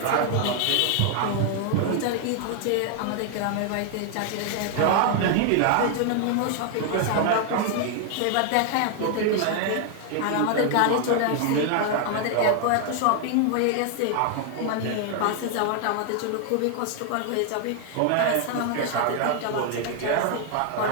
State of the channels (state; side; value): different; both; correlation 0.00